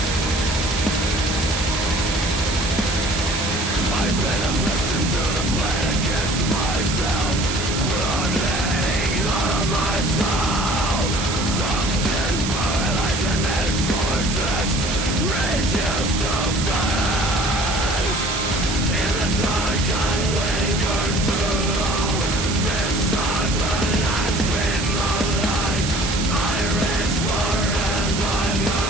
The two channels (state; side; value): noise; right; hiss, 5 dB below the sound